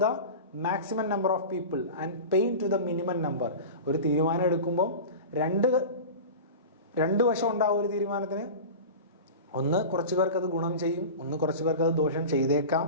the maximum number of people and pain to the minimum number. ഒരു തീരുമാനം എടുക്കുമ്പോൾ രണ്ട് വശം ഉണ്ടാവും ഒരു തീരുമാനത്തിന്. ഒന്ന് കുറച്ച് പേർക്ക് അത് ഗുണം ചെയ്യും, ഒന്ന് കുറച്ച് പേർക്ക് അത് ദോഷം ചെയ്തേക്കാം.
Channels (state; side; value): inverted; both; correlation -0.31